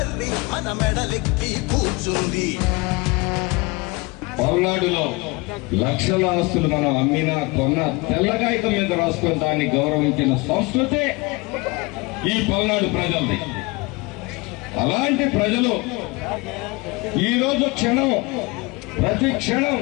మన మెడలెక్కి కూర్చుంది. పల్నాడులో లక్షల ఆస్తులు మనం అమ్మినా కొన్న తెల్లగాయతం మీద రాసుకుని దాన్ని గౌరవించిన సంస్కృతి ఈ పల్నాడు ప్రజలది. అలాంటి ప్రజలు ఈరోజు ప్రతి క్షణం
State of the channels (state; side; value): quieter; right; 25.4 dB